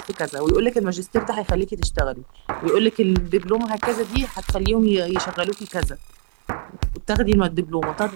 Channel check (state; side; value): silent; left; digital silence